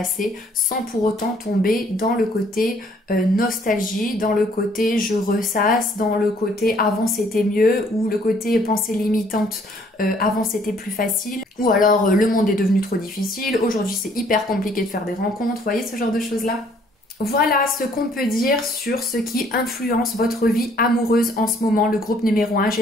sans pour autant tomber dans le côté nostalgie, dans le côté je ressasse, dans le côté avant c'était mieux ou le côté pensée limitante avant c'était plus facile ou alors le monde est devenu trop difficile, aujourd'hui c'est hyper compliqué de faire des rencontres, vous voyez ce genre de choses là? Voilà ce qu'on peut dire sur ce qui influence votre vie amoureuse en ce moment, le groupe numéro 1.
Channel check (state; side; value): normal; both; correlation 0.62